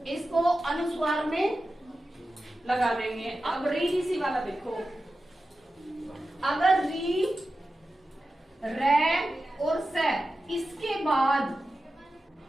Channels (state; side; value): normal; both; correlation 0.93